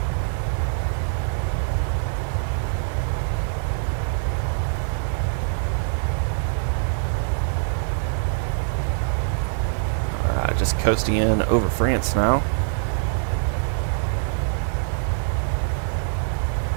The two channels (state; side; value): silent; left; digital silence